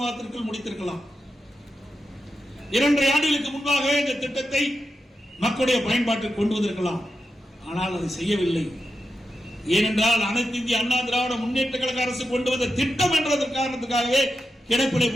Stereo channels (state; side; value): normal; both; correlation 0.89